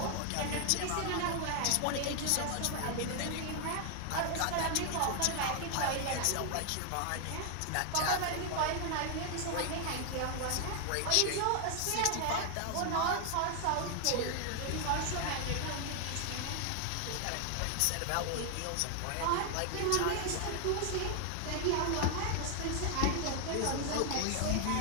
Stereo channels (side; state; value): both; different; correlation 0.00